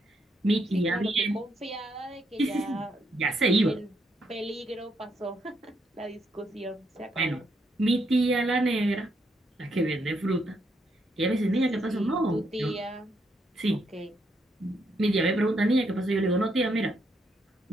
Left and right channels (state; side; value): normal; both; correlation 0.76